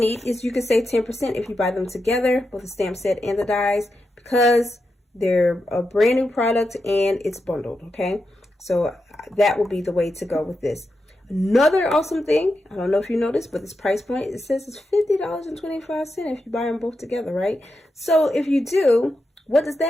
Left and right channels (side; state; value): both; normal; correlation 0.87